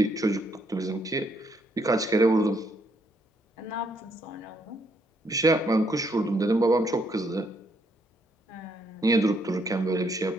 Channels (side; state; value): both; normal; correlation 0.72